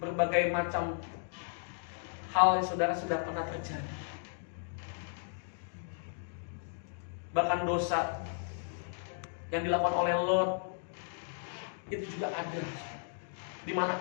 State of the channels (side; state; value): right; silent; digital silence